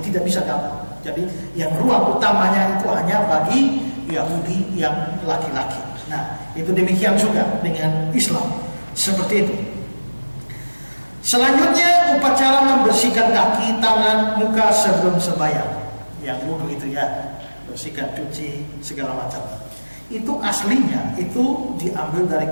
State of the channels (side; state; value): both; inverted; correlation -1.00